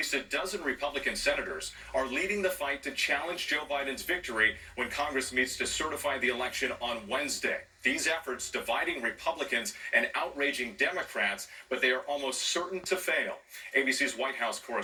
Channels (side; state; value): both; identical; correlation 1.00